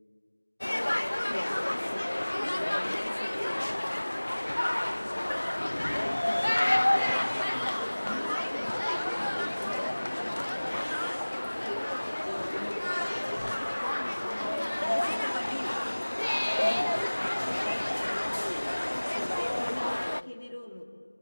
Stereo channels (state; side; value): inverted; both; correlation -1.00